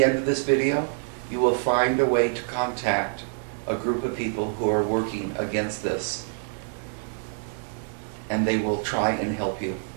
end of this video, you will find a way to contact a group of people who are working against this, and they will try and help you.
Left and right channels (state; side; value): silent; left; digital silence